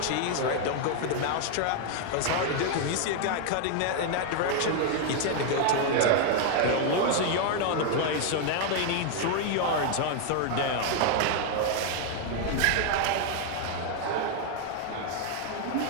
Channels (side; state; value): both; different; correlation 0.00